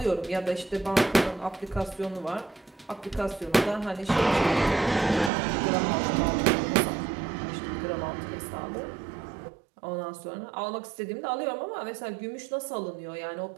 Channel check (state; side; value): drops out; left; at 5.3 s